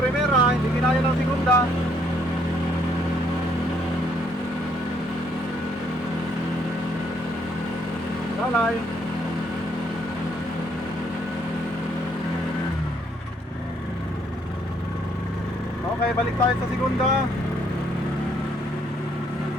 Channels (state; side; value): normal; both; correlation 0.68